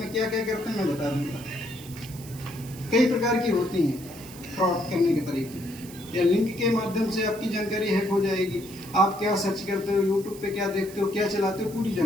क्या क्या करते हैं मैं बता दूंगा। कई प्रकार की होती हैं फ्रॉड करने के तरीके, या लिंक के माध्यम से आपकी जानकारी हैक हो जाएगी। आप क्या सर्च करते हो, यूट्यूब पे क्या देखते हो, क्या चलाते हो, पूरी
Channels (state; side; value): noise; right; hiss, 17 dB below the sound